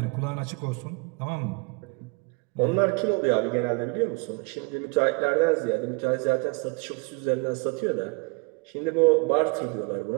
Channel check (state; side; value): quieter; left; 30.9 dB